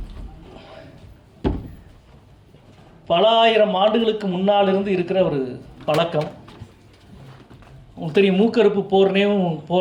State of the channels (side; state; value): both; identical; correlation 1.00